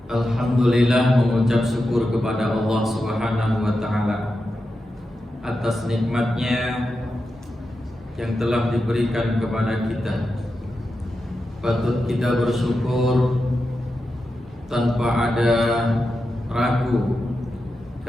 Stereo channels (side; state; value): both; normal; correlation 0.89